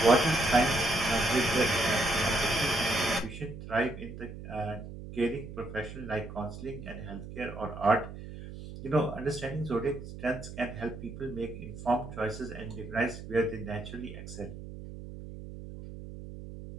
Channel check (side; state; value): right; noise; hum, 11 dB below the sound